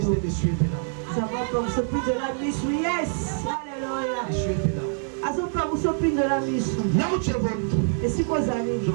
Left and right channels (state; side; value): silent; left; 56 dB below the other